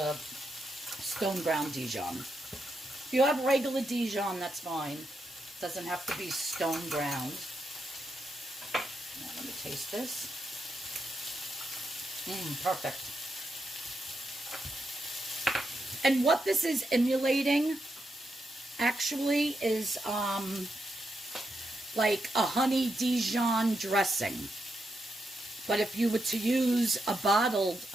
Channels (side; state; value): both; normal; correlation 0.84